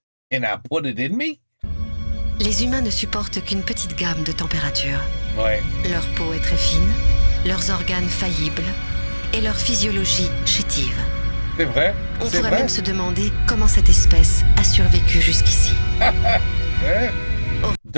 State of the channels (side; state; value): both; inverted; correlation -1.00